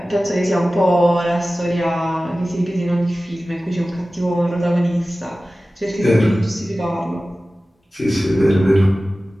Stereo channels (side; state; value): both; normal; correlation 0.96